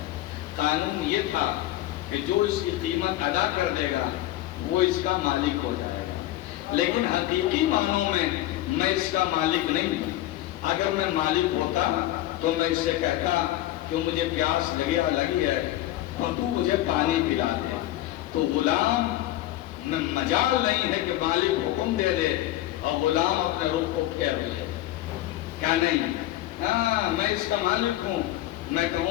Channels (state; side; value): quieter; right; 14.9 dB